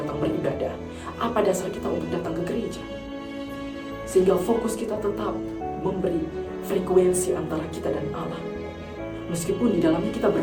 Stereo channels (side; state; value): both; identical; correlation 1.00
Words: beribadah? Apa dasar kita untuk datang ke gereja? Sehingga fokus kita tetap memberi frekuensi antara kita dan Allah. Meskipun di dalamnya kita